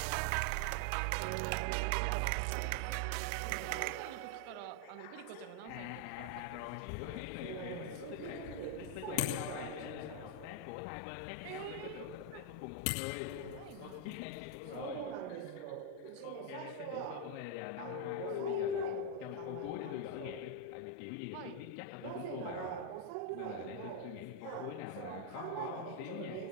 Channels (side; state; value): both; different; correlation 0.00